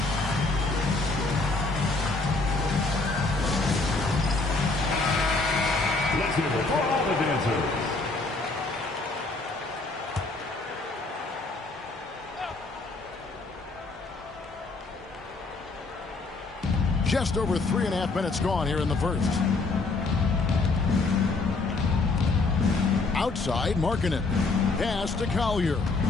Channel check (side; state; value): right; quieter; 3.6 dB